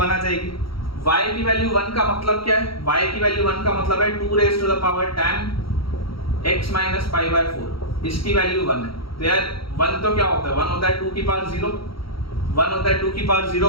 आ जाएगी। y की वैल्यू 1 का मतलब क्या है, y की वैल्यू 1 का मतलब है 2 raised to the power tan x minus pi by 4, इसकी वैल्यू 1 है। तो यार 1 तो क्या होता है, 1 होता है 2 की पावर 0, 1 होता है 2 की पावर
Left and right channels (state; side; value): late; right; 0.75 ms